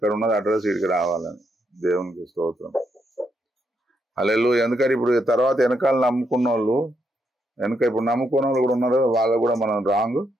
ఉన్నది అడ్రస్ ఇక్కడికి రావాలని. దేవునికి స్తోత్రం. హల్లెలూయా. ఎందుకంటే ఇప్పుడు తర్వాత వెనకాల నమ్ముకున్న వాళ్ళు, ఇప్పుడు నమ్ముకున్న వాళ్ళు కూడా ఉన్నారు, వాళ్ళు కూడా మనం రాంగ్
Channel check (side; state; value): both; normal; correlation 0.78